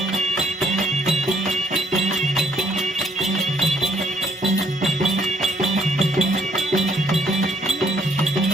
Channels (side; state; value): both; normal; correlation 0.68